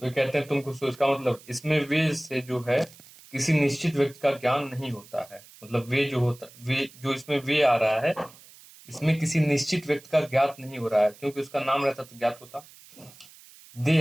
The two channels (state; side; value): noise; right; hiss, 22 dB below the sound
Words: कहते हैं तुम खुश हो, इसका मतलब इसमें वे से जो है किसी निश्चित व्यक्ति का ज्ञान नहीं होता है, मतलब वे जो होता, वे जो इसमें वे आ रहा है इसमें किसी निश्चित व्यक्ति का ज्ञात नहीं हो रहा है, क्योंकि उसका नाम रहता तो ज्ञात होता। दे